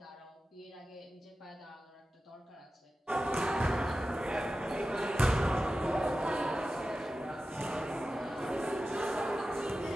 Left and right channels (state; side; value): normal; both; correlation 0.94